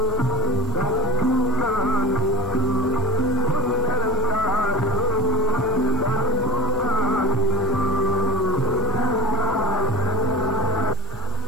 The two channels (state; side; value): normal; both; correlation 0.27